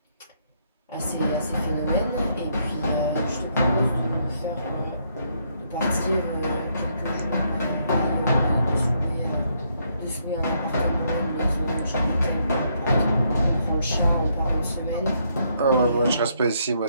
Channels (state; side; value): inverted; both; correlation -0.73